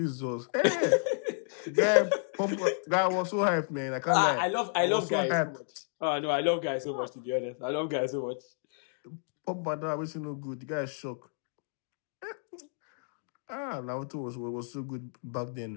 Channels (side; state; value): right; silent; 57 dB below the other